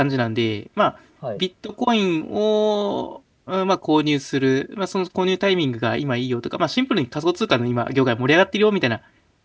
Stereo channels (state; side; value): identical; both; correlation 1.00